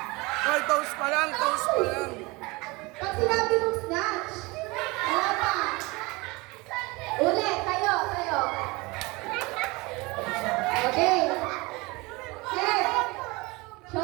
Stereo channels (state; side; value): quieter; left; 24.4 dB